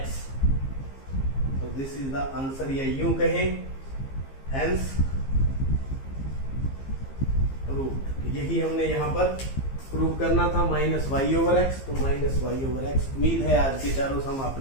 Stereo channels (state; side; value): late; right; 15 ms